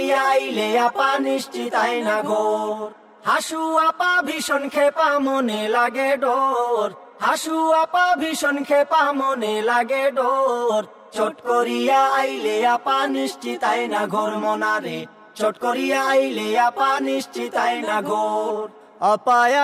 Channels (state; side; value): identical; both; correlation 1.00